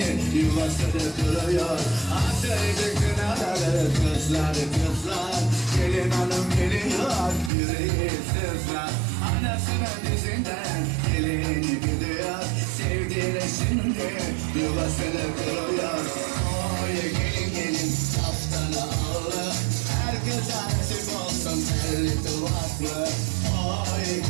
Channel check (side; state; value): left; drops out; at 7.5 s